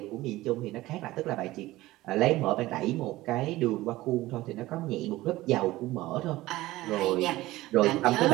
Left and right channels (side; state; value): left; quieter; 17.6 dB